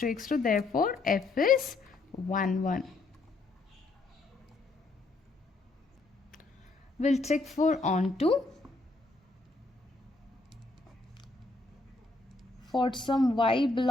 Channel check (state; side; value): quieter; right; 3.4 dB